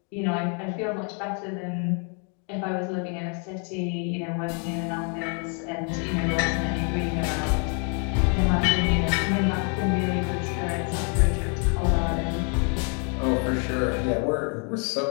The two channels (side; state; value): right; quieter; 39.2 dB